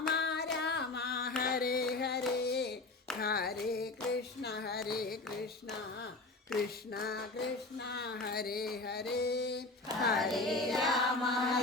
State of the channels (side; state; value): right; quieter; 3.2 dB